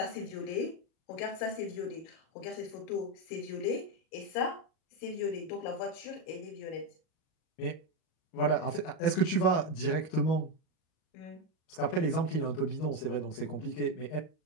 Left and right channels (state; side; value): late; right; 38 ms